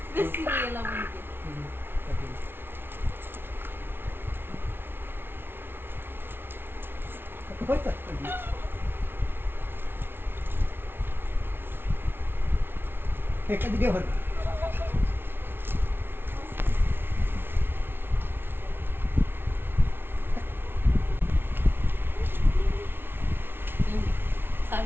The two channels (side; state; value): left; late; 0.11 ms